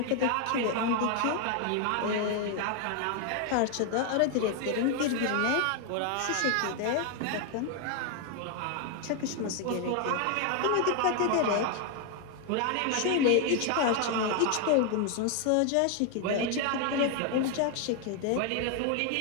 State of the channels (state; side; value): different; both; correlation 0.01